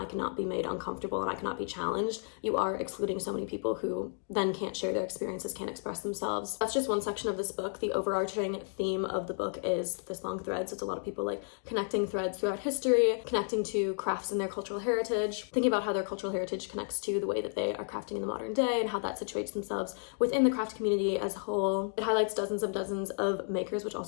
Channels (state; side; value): silent; right; 56 dB below the other